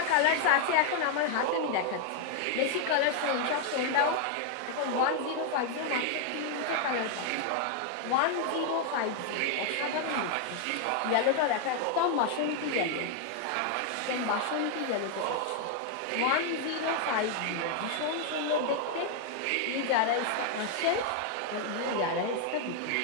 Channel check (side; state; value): both; different; correlation 0.00